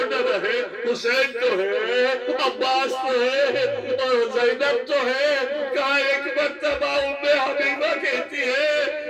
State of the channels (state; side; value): identical; both; correlation 1.00